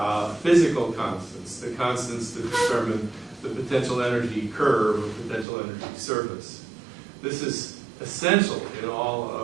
physical constants, the constants that determine the potential energy curve or potential energy surface. This is essential in all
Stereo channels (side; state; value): left; drops out; at 5.5 s